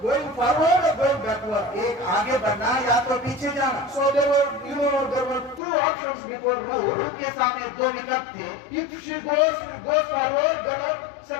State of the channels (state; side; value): drops out; right; at 5.6 s